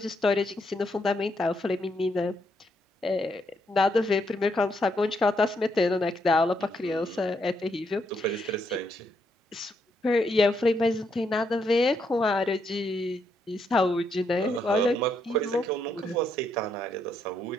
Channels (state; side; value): normal; both; correlation 0.77